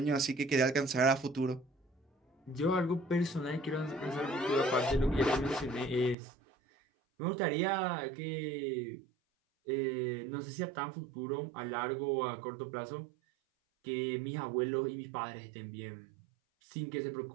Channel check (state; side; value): drops out; left; at 6.2 s